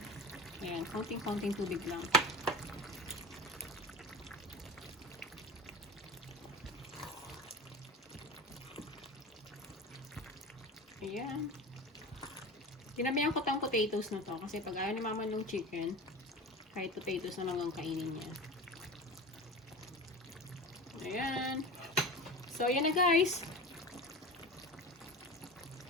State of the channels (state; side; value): normal; both; correlation 0.30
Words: Ayan, konting-konting tubig lang. Ayan. Tinabihan ko tong potatoes na to kasi pag ayaw ni mama ng chicken, kahit potatoes na lang ang kainin niya. Ayan. So, ayan na guys.